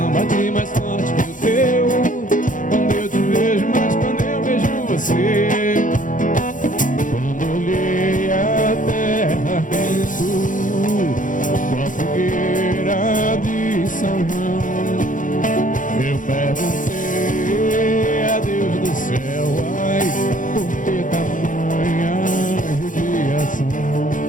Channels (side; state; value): right; late; 0.38 ms